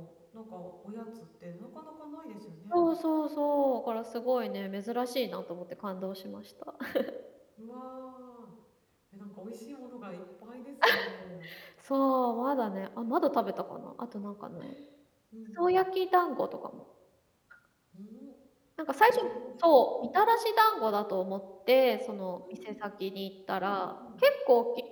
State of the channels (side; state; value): both; identical; correlation 1.00